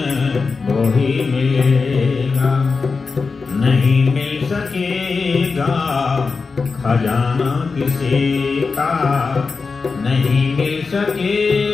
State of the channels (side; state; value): right; quieter; 4.6 dB